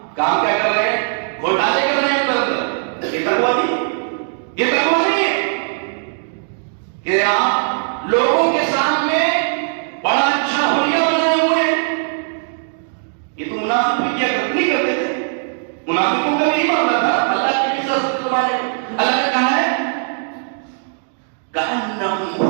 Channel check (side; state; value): left; silent; digital silence